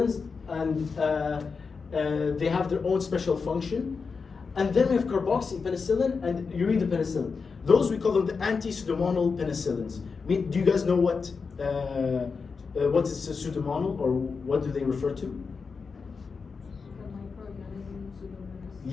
and they have their own special function. And then we have carboxypenicillin and uridopenicillin. Those we call them the anti-pseudomonal penicillins. Do you guys know what is a pseudomonal, or what do they refer to? The microorganism Pseudomonas.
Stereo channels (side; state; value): right; quieter; 5.1 dB